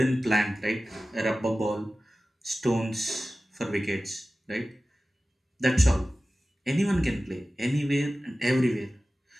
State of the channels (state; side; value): normal; both; correlation 0.96